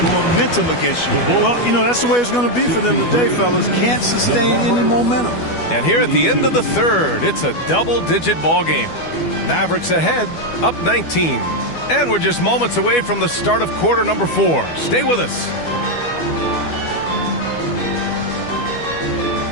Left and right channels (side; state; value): right; late; 12 ms